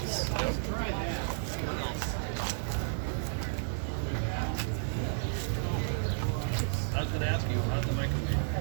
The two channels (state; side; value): silent; left; digital silence